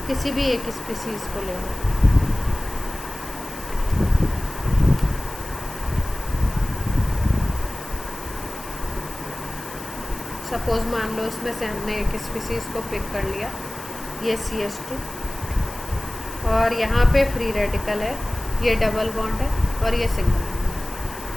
किसी भी एक स्पीसीज को ले लो, सपोज मान लो इसमें से हमने एक स्पीसीज को पिक कर लिया, ये CH2, और यहाँ पे फ्री रेडिकल है, ये डबल बॉन्ड है और ये सिंगल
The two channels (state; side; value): noise; left; hiss, 16 dB below the sound